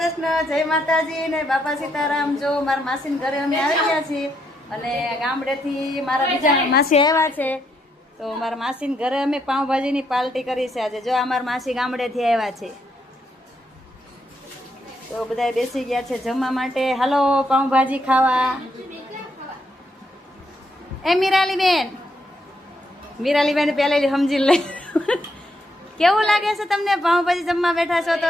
જય માતાજી ને બાપા સીતારામ. જો મારા માસીના ઘરે અમે આવી ગયા છીએ અને ગામડેથી મારા બીજા માસી આવ્યા છે. તો મારા માસીના ઘરે અમે પાઉંભાજીની પાર્ટી કરી છે આજે. જો અમારા માસી ગામડેથી આવ્યા છે તો બધા બેસી ગયા છે જમવા માટે. હાલો પાઉંભાજી ખાવા. એ મીરાલીબેન પહેલેથી સમજી લઈ. કેવું લાગે છે તમને પાઉંભાજી જમવા બેઠા છો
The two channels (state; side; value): normal; both; correlation 0.77